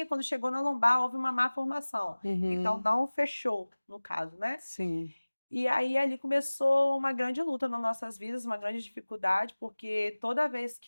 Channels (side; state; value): both; inverted; correlation -1.00